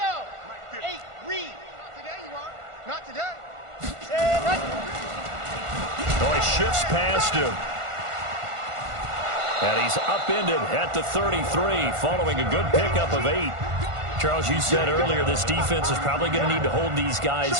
8, read. Not today, you are. Not today. Oh, he shifts past him. And he's upended at the 33 following a good pickup of 8. Charles, you said earlier this defense is probably going to need to hold these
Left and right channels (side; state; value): left; late; 1.5 ms